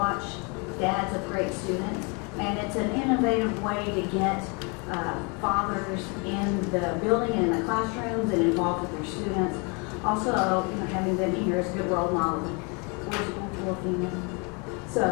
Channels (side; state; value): right; quieter; 32.2 dB